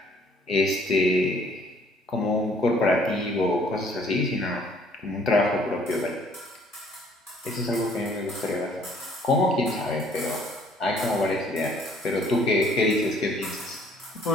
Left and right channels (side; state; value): both; normal; correlation 0.60